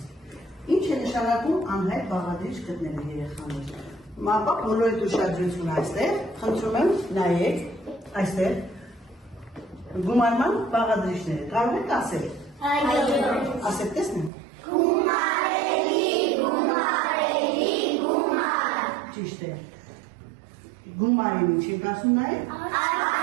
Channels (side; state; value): left; drops out; at 14.3 s